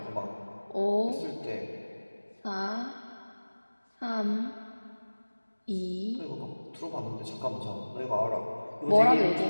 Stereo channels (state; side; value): inverted; both; correlation -1.00